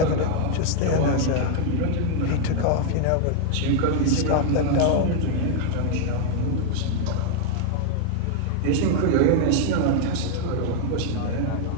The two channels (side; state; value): both; different; correlation 0.00